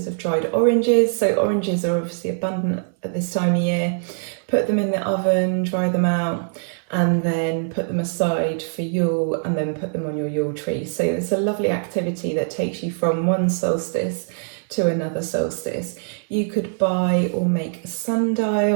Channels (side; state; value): left; silent; 64 dB below the other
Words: of dried oranges. So oranges are obviously abundant at this time of year. Put them in the oven, dry them out, and then put them aside for Yule, and then put them on your Yule tree. So it's a lovely activity that takes you from one solstice to another solstice. You could buy or make a